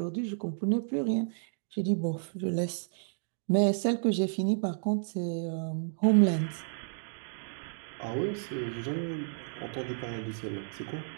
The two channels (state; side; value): silent; left; digital silence